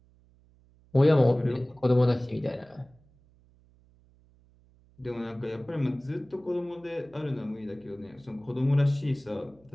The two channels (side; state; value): right; noise; hum, 30 dB below the sound